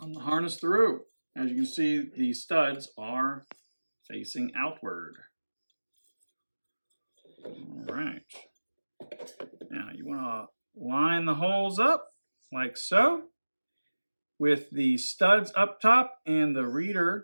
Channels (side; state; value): both; inverted; correlation -1.00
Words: the harness through. As you can see, the studs are facing outward. All right. Now, you want to line the holes up like so, with the studs up top and the